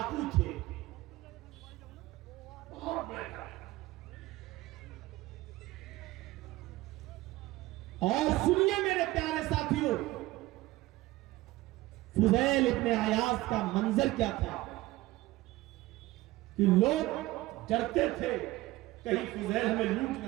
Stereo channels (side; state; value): left; quieter; 18.5 dB